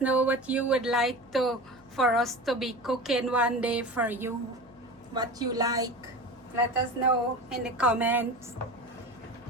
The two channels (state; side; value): noise; right; hum, 29 dB below the sound